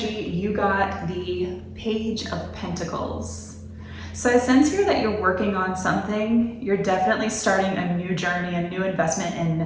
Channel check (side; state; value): both; identical; correlation 1.00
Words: you got the Page of Pentacles. So I sense here that you're working on something. You're definitely starting a new journey, a new investment in,